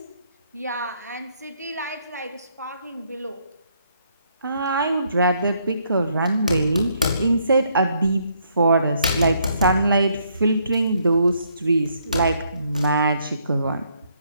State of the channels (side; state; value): both; inverted; correlation -0.71